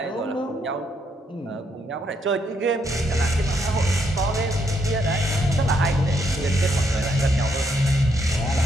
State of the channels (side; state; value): both; normal; correlation 0.75